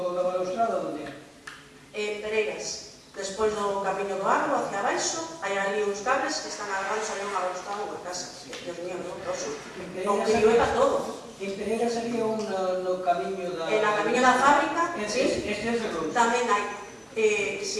balustrada, onde é? En Pereiras, despois do camiño do agro, hacia abaixo, hai ali uns cables que están agarrados ali unha balustrada unha casa. Dios mío, non toso. Non que llueva todo. En Pereiras sería no camiño da... En a camiño da fábrica, sí, tamén hai.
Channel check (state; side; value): identical; both; correlation 1.00